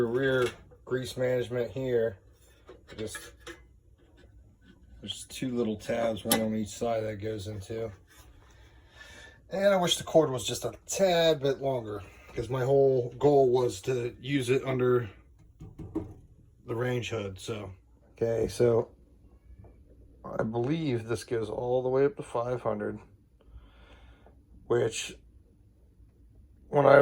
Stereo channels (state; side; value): identical; both; correlation 1.00